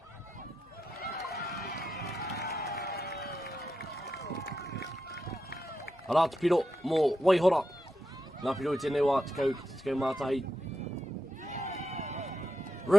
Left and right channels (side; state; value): both; normal; correlation 0.86